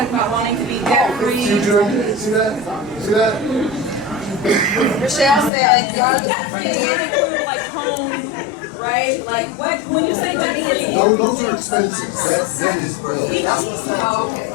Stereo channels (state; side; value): drops out; right; at 5.5 s